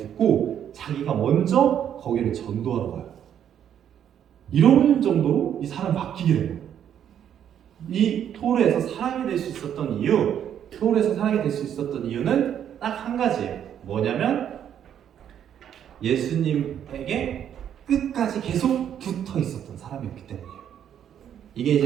자기가 먼저 거기를 전도하러 가요. 이런 정도로 이 사람이 바뀌게 된 거예요. 이 토르에서 사랑이 될 수 있었던 이유는 딱 한 가지예요. 뭐냐면 예수님에게 끝까지 계속 붙어 있었던 사람이었기 때문이에요. 이게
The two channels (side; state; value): left; quieter; 9.5 dB